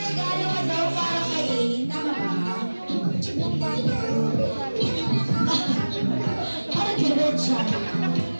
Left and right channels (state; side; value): inverted; both; correlation -1.00